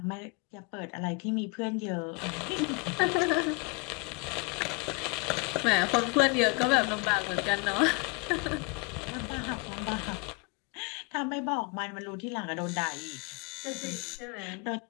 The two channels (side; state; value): right; quieter; 28.1 dB